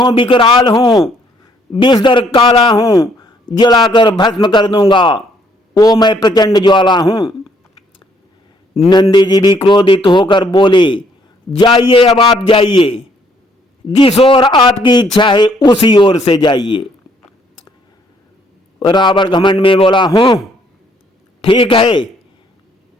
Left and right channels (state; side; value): normal; both; correlation 0.67